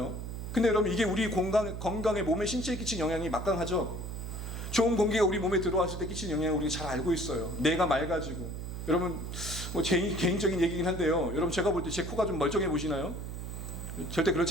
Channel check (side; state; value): right; noise; hum, 7 dB below the sound